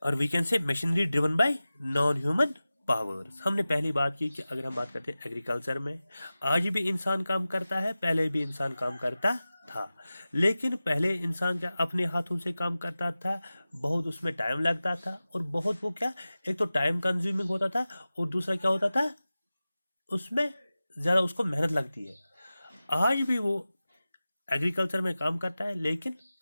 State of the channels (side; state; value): both; inverted; correlation -0.96